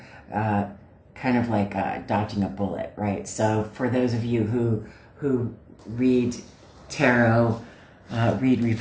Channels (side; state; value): both; identical; correlation 1.00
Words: kind of like dodging a bullet, right? So for those of you who read tarot, read